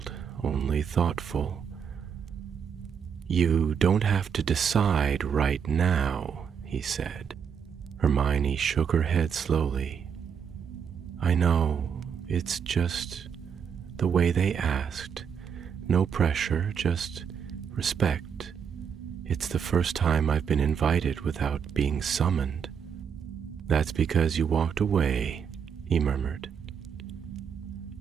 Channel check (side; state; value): left; quieter; 7.2 dB